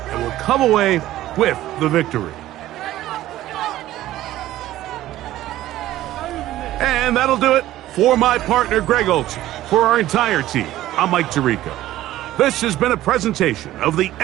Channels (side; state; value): left; quieter; 14.6 dB